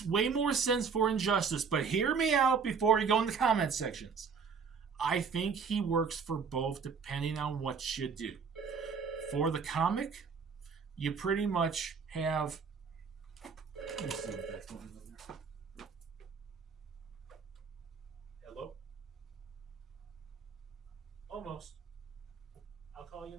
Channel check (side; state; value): left; quieter; 5.7 dB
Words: way more sense for Injustice, but hear me out before you go in the comment sections. I think he works for both depending on what you do. For the comic, you pretty much have... Let's see what that's going on there. Hello? Almost. I'll call you